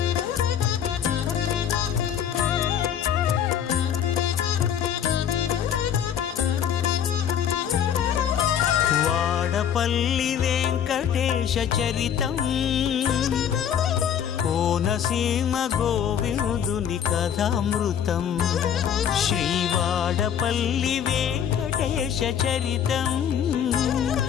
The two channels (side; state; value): right; quieter; 8.9 dB